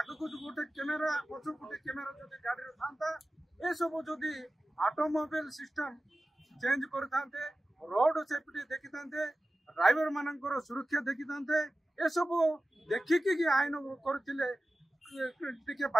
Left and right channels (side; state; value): both; normal; correlation 0.95